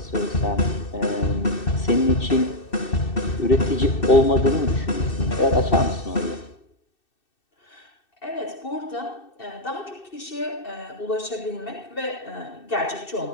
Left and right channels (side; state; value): right; late; 2.6 ms